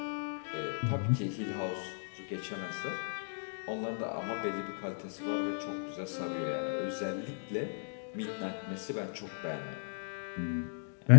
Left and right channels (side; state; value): right; silent; digital silence